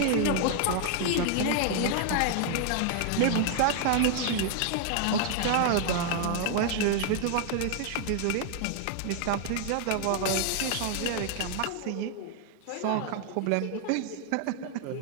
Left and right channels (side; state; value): both; different; correlation 0.00